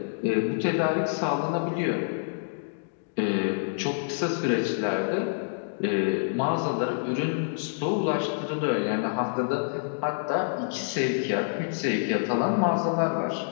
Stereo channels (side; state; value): right; silent; digital silence